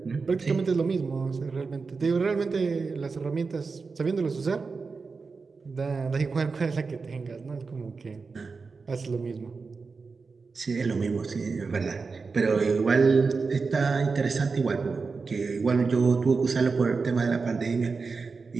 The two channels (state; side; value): quieter; left; 4.6 dB